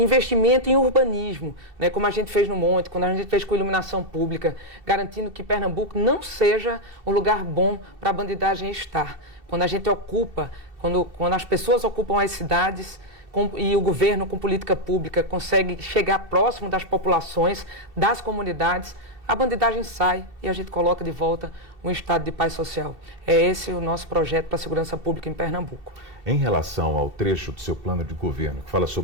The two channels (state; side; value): late; left; 2.7 ms